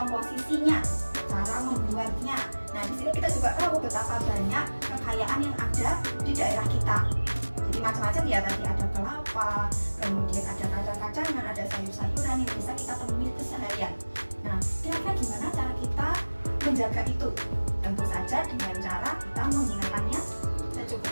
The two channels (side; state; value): both; inverted; correlation -1.00